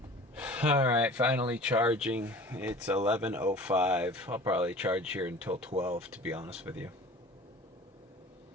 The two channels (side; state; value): both; normal; correlation 0.42